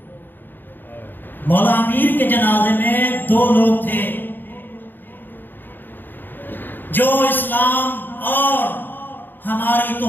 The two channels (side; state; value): right; late; 0.092 ms